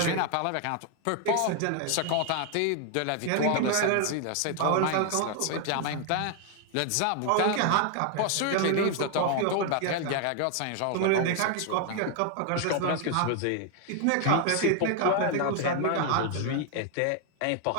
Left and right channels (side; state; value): both; different; correlation 0.00